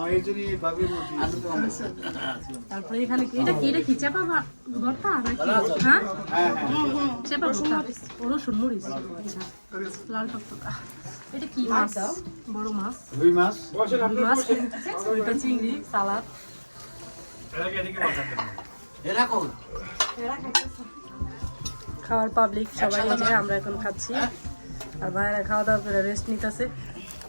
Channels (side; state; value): both; inverted; correlation -1.00